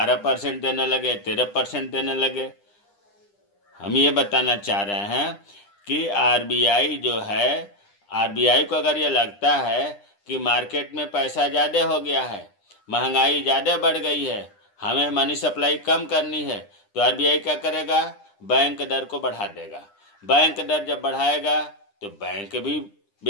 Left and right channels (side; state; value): right; late; 9.9 ms